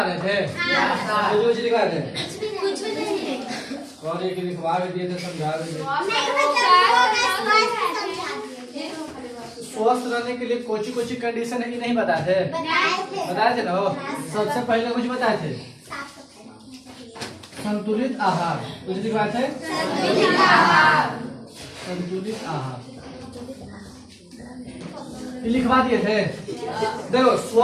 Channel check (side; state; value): both; identical; correlation 1.00